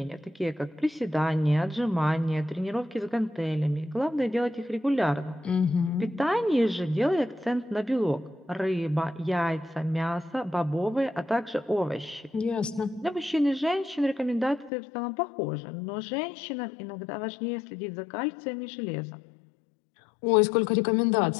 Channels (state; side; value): drops out; right; at 14.7 s